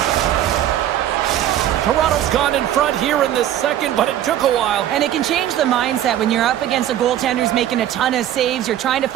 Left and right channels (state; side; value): quieter; left; 11.8 dB